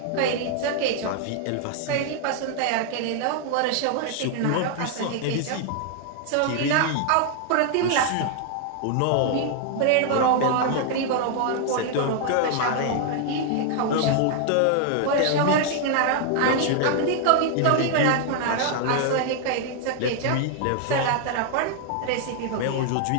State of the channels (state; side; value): different; both; correlation 0.00